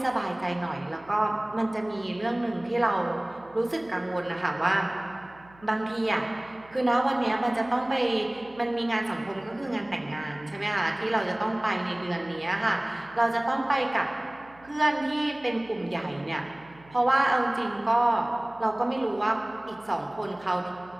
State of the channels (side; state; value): right; noise; hum, 25 dB below the sound